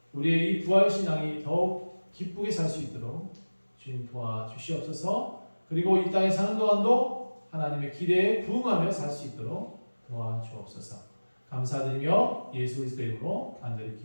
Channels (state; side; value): inverted; both; correlation -1.00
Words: 우리의 이 부활신앙이 더욱 기쁘게 살 수 있도록 주님 도와주시옵소서. 그리고 이 땅에 사는 동안도 하나님의 기대에 부응하며 살 수 있도록 도와주옵소서. 감사드리며 예수 그리스도의 이름으로 간절히